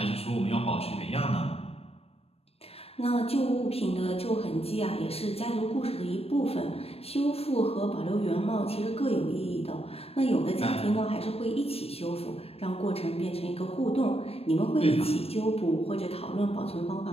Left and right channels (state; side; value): late; right; 0.29 ms